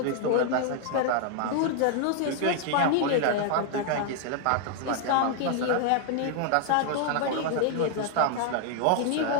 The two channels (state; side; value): different; both; correlation 0.00